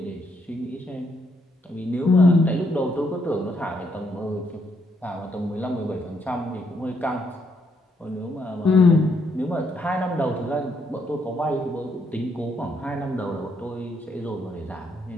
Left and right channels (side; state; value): both; normal; correlation 0.75